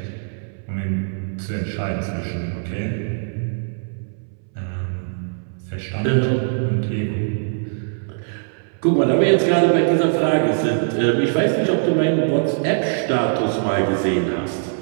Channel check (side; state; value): left; silent; 65 dB below the other